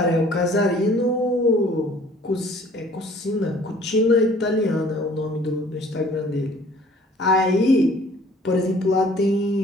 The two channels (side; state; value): both; normal; correlation 0.54